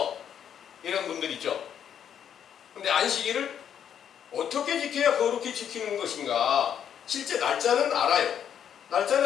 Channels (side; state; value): right; quieter; 8.9 dB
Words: 이런 분들 있죠. 근데 안식일을 어떻게 지켜야 거룩히 지키는 것인가? 실제 날짜는 알아요. 날짜는